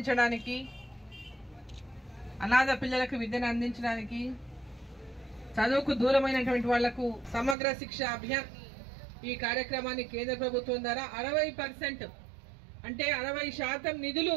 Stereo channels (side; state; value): left; drops out; at 7.6 s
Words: అనాథ పిల్లలకు విద్యను అందించడానికి, చదువుకు దూరమైనటువంటి వాళ్లకు సమగ్ర శిక్ష అభియాన్ ఈ కార్యక్రమాన్ని కేంద్ర ప్రభుత్వం ద్వారా 60% అంటే 60% నిధులు